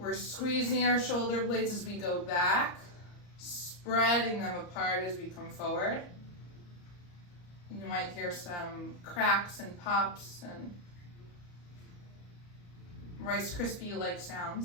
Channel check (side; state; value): right; late; 34 ms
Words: squeezing our shoulder blades as we go back, spreading them apart as we come forward. You might hear some cracks and pops and Rice Krispie-like